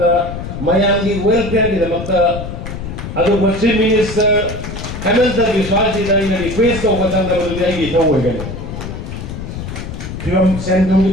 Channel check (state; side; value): noise; left; rumble, 8 dB below the sound